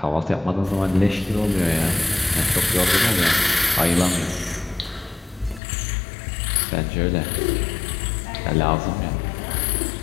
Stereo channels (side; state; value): right; drops out; at 5.6 s